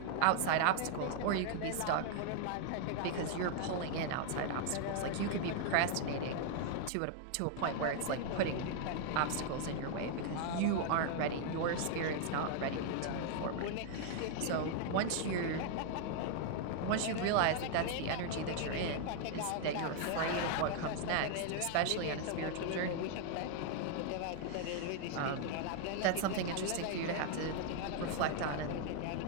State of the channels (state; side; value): different; both; correlation 0.00